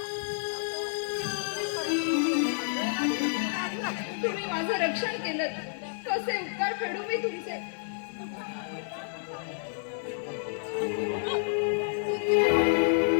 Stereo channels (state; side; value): silent; right; 58 dB below the other